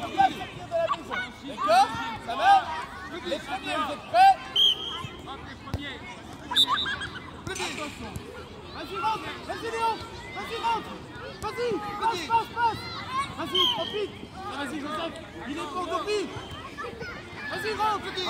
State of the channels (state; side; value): identical; both; correlation 1.00